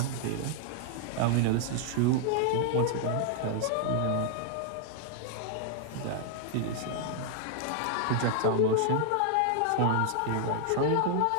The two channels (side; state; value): both; different; correlation 0.00